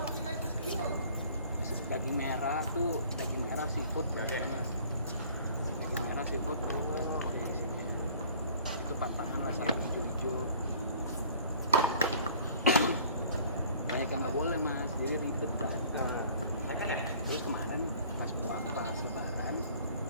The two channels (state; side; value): inverted; both; correlation -0.52